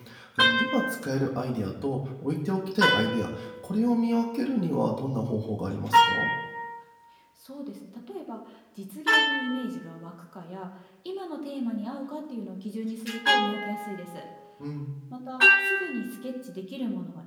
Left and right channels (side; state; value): both; identical; correlation 1.00